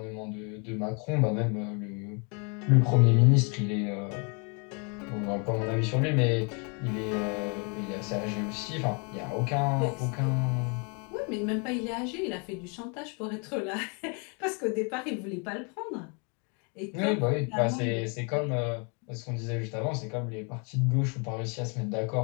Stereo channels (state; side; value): quieter; right; 35.2 dB